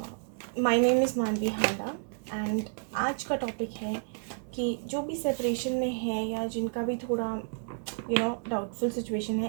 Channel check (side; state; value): left; silent; digital silence